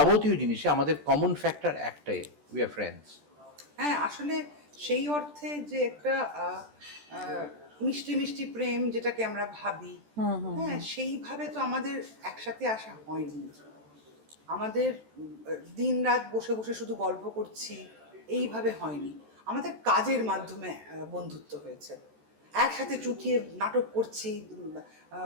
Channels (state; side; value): late; left; 14 ms